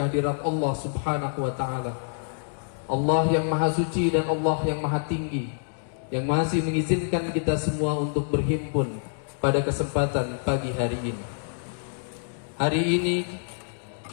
Allah Subhanahu wa ta'ala, Allah yang maha suci dan Allah yang maha tinggi, yang masih mengizinkan kita semua untuk berhimpun pada kesempatan pagi hari ini. Hari ini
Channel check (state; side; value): silent; right; digital silence